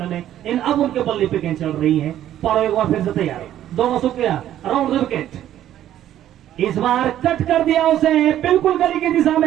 में, इन अब उनके बल्ले पे गेंद चल रही है। पारो एक बार फिर से तैयार, दोनों शुक्रिया, राउंड द विकेट। इस बार कट कर दिया उसे, बिल्कुल गली की दिशा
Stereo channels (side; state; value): left; quieter; 11.9 dB